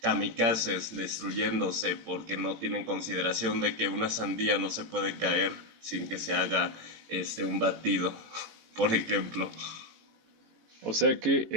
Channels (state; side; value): late; left; 18 ms